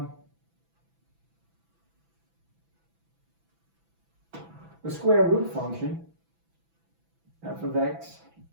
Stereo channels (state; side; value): late; left; 6.0 ms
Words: square root function, f of x